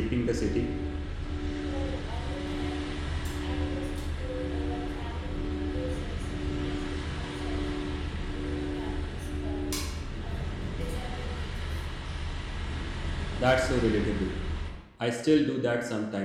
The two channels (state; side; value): identical; both; correlation 1.00